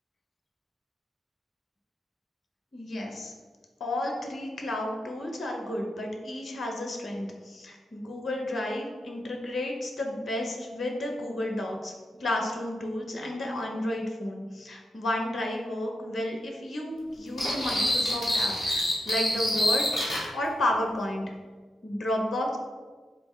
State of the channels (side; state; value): both; normal; correlation 0.85